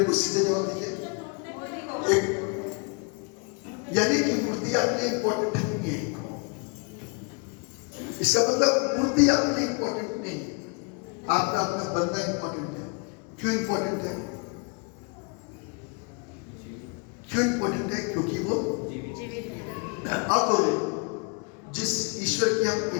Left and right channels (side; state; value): right; quieter; 34.2 dB